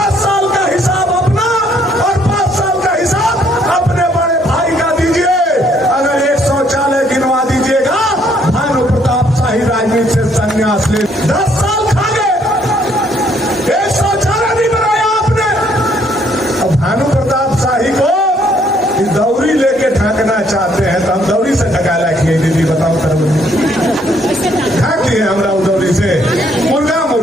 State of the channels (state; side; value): normal; both; correlation 0.67